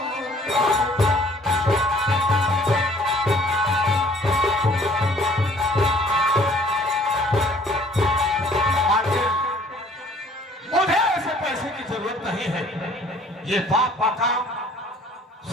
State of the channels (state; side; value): normal; both; correlation 0.56